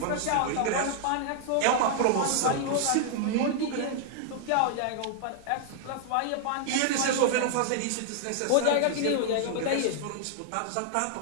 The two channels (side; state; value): both; different; correlation -0.01